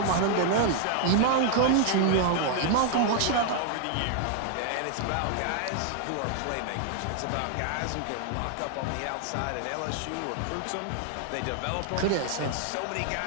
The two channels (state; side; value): different; both; correlation 0.00